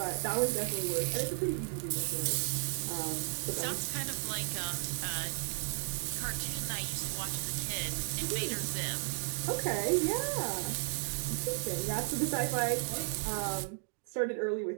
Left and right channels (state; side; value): silent; left; digital silence